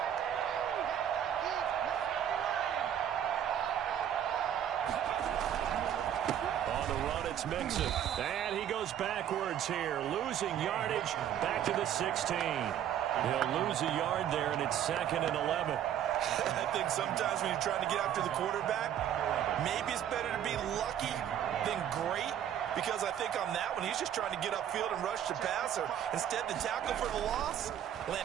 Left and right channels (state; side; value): quieter; left; 10.1 dB